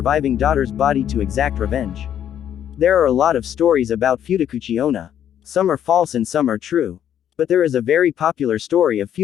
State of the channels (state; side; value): quieter; right; 10.0 dB